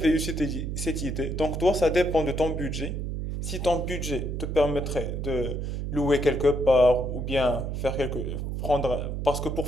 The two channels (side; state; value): right; noise; hum, 3 dB below the sound